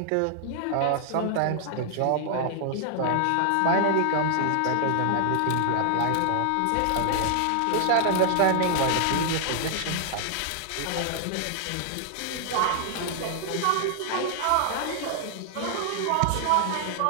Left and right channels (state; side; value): different; both; correlation 0.00